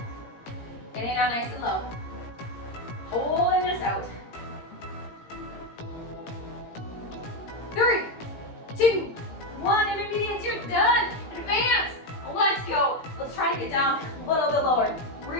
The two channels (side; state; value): right; late; 17 ms